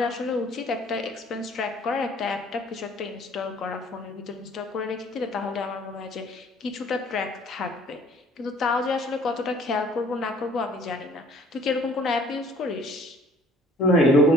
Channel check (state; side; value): normal; both; correlation 0.55